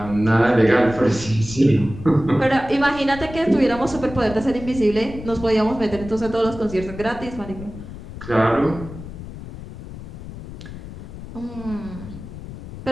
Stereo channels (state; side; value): noise; left; rumble, 12 dB below the sound